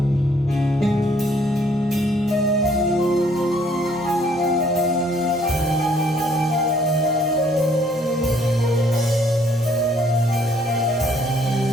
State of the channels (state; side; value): normal; both; correlation 0.64